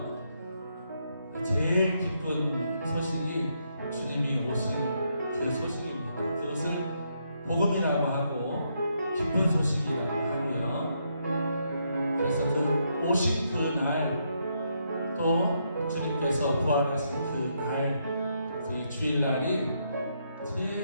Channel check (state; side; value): inverted; both; correlation -0.77